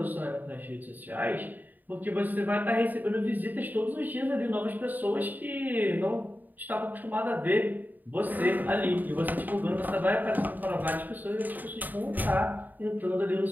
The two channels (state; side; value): late; left; 0.086 ms